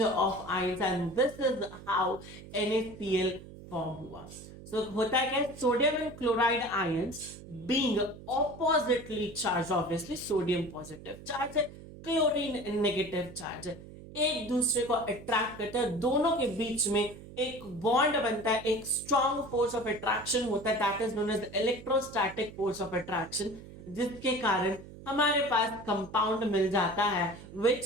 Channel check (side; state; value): right; noise; hum, 16 dB below the sound